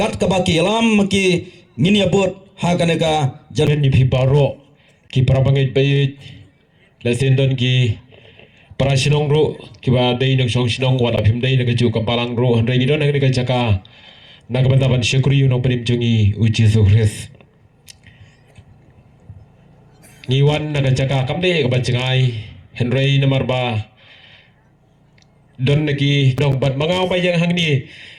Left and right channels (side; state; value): both; identical; correlation 1.00